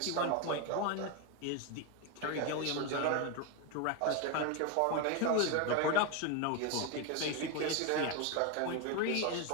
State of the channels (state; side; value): different; both; correlation 0.02